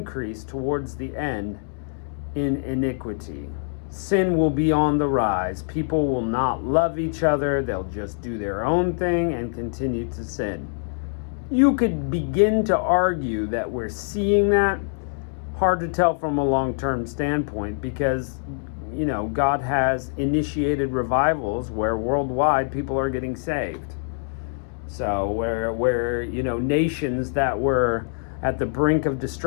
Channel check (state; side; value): silent; right; 62 dB below the other